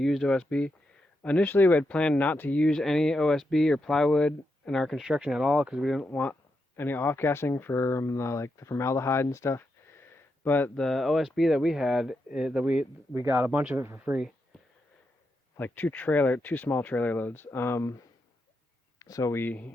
OSB. Initially, we had planned not to use any OSB or plywood in our construction at all because we didn't want any off-gassing from the formaldehyde and stuff. But the OSB that we had, that we got a bunch of it for free, like two small trailer loads. So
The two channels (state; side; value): normal; both; correlation 0.84